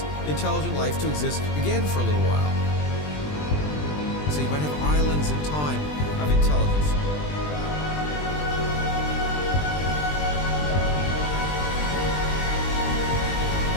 intelligent life to exist again for a little while. So you might have islands in time of intelligence.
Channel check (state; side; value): late; right; 20 ms